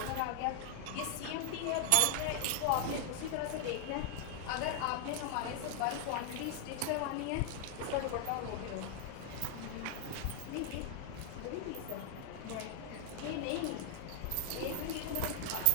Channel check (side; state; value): both; different; correlation 0.00